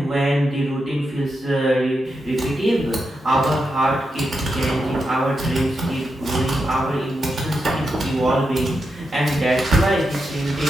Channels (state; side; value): normal; both; correlation 0.86